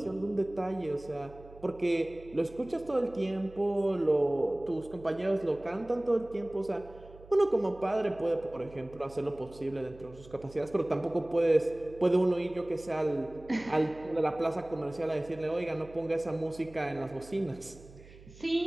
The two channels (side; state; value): right; noise; hum, 20 dB below the sound